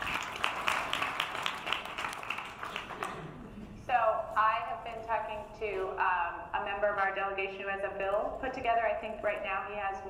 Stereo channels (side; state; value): both; identical; correlation 1.00